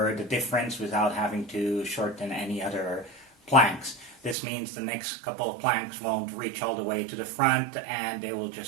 the difference without having to shorten any other planks. This means the next couple of planks won't reach all the way to the front, and they will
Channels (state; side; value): drops out; left; at 4.4 s